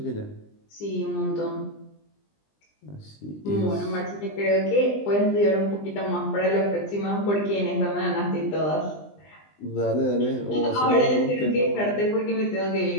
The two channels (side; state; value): right; late; 20 ms